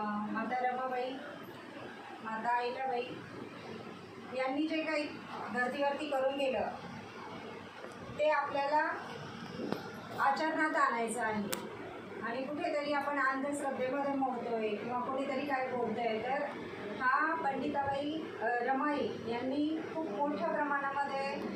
माता रमाबाई, माता अहिल्याबाई यांनी जे काही धर्तीवरती करून गेलं ते आपल्याला आचरणात आणायचं आहे। आणि कुठेतरी आपण अंधश्रद्धेमध्ये मोडतोय किंवा कोणीतरी काय बोलतंय, तर हा पंडिताबाई रमाई यांनी खूप मोठ्या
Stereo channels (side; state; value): both; identical; correlation 1.00